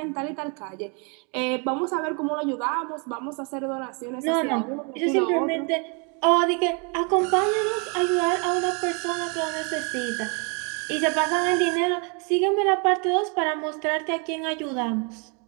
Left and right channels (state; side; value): quieter; left; 35.0 dB